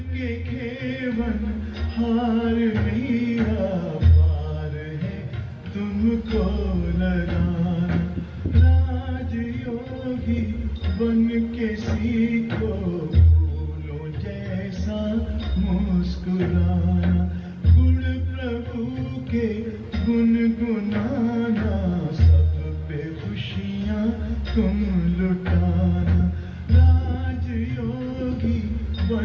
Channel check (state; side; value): identical; both; correlation 1.00